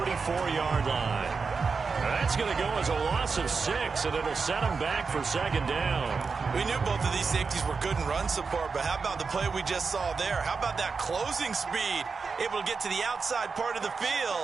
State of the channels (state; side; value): quieter; left; 4.9 dB